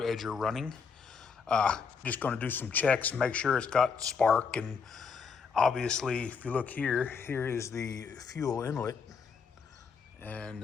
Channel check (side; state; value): right; quieter; 5.7 dB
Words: running. Just going to do some checks, make sure it's got spark, and obviously if you look here, here is the fuel inlet